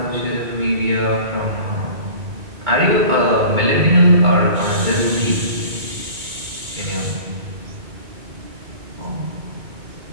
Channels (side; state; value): left; late; 2.2 ms